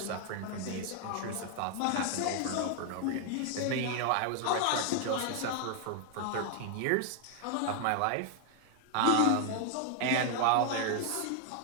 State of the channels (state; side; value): different; both; correlation 0.00